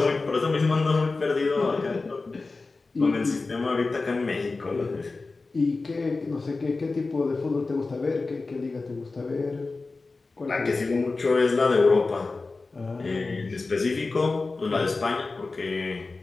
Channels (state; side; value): quieter; right; 3.7 dB